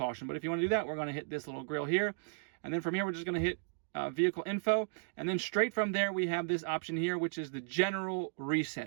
But if you want to do that, we're going to hit this little grill here, and then from here we're just going to hit vehicle info, and then straight from there we have this option here, which is the general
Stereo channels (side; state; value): left; silent; digital silence